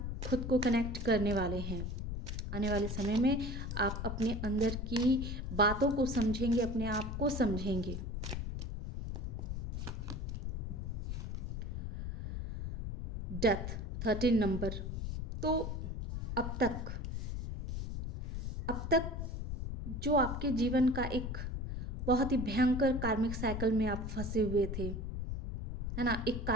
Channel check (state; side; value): noise; left; rumble, 3 dB below the sound